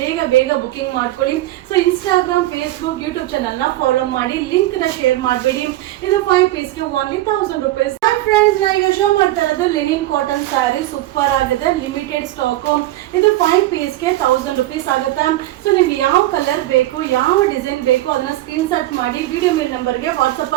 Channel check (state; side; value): quieter; left; 16.0 dB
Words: ಬೇಗ ಬುಕಿಂಗ್ ಮಾಡ್ಕೊಳ್ಳಿ. So Instagram, Facebook, YouTube channel ನ ಫಾಲೋ ಮಾಡಿ. ಲಿಂಕ್ ನ ಶೇರ್ ಮಾಡಬೇಡಿ. ಇದು 5 ಪೀಸ್ಗೆ ಓನ್ಲಿ 1000 rupees. ಫ್ರೆಂಡ್ಸ್ ನಾ ಈಗ ಶೋ ಮಾಡ್ತಾ ಇರೋದು ಲಿನಿನ್ ಕಾಟನ್ ಸ್ಯಾರಿ ಸೂಪರ್ ಆಗಿದೆ. Limited stock. ಇದು 5 ಪೀಸ್ಗೆ 1000 rupees ಆಗುತ್ತೆ. ಸೊ ನಿಮ್ಗೆ ಯಾವ ಕಲರ್ ಬೇಕು, ಯಾವ ಡಿಸೈನ್ ಬೇಕು ಅದನ್ನ ಸ್ಕ್ರೀನ್ ಶಾಟ್ ಮಾಡಿ ವಿಡಿಯೋ ಮೇಲ್ ನಂಬರ್ಗೆ ವಾಟ್ಸಪ್